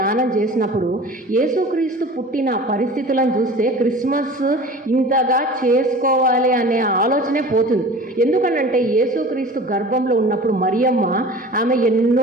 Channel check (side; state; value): both; normal; correlation 0.40